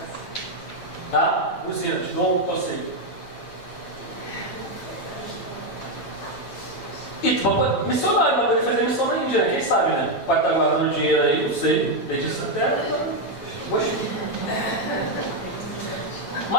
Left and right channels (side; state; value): right; late; 8.9 ms